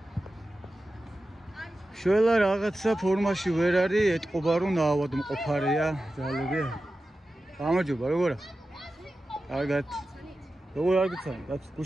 შველა რაღაცა ფორმაში ვერ არის, ეთყობა რომ ნაავადმყოფარია ძალები. გამარჯობა, როგორ ახ? კარგად. როგორ არ გიცანი? რაც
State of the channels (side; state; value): both; normal; correlation 0.93